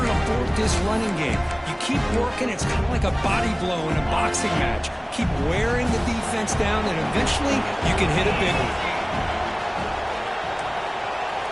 this running game. You keep working. It's kind of like a body blow in a boxing match. Keep wearing the defense down, and eventually you can hit a big one.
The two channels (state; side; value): identical; both; correlation 1.00